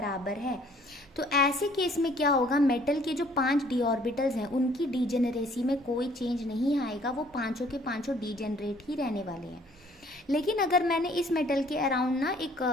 है। तो ऐसे केस में क्या होगा, मेटल के जो 5 डी ऑर्बिटल्स हैं उनकी डीजेनरेसी में कोई चेंज नहीं आएगा, वो 5 के 5 डीजेनरेट ही रहने वाले हैं। लेकिन अगर मैंने इस मेटल के अराउंड ना एक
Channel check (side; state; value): both; normal; correlation 0.59